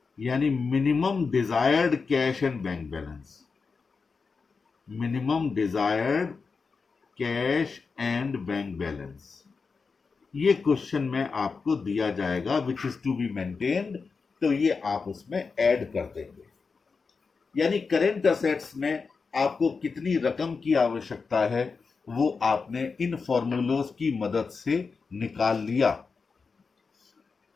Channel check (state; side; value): quieter; right; 4.8 dB